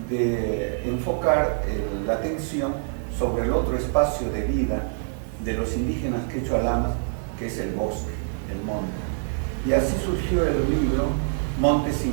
de enfocar la atención sobre el otro espacio de vida de los indígenas quechua-alamas, que es el bosque, el monte. Y así surgió el libro Montes y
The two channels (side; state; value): left; silent; 55 dB below the other